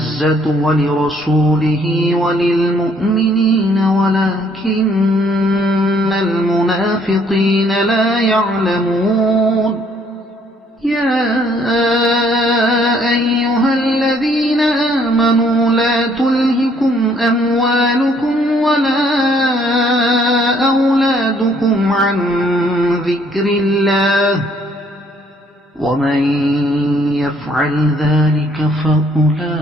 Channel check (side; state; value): both; normal; correlation 0.64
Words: ولرسوله وللمؤمنين ولكن المنافقين لا يعلمون يا أيها الذين آمنوا لا تلهكم أموالكم ولا أولادكم عن ذكر الله ومن يفعل ذلك فأولئك